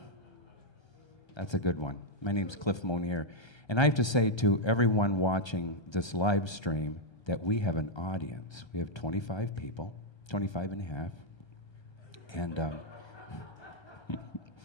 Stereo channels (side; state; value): right; late; 1.3 ms